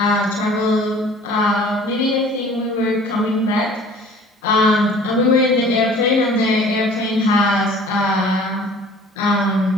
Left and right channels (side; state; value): both; normal; correlation 0.49